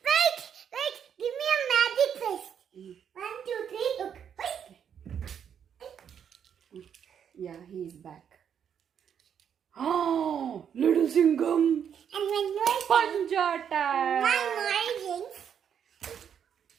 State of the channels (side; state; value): left; quieter; 8.2 dB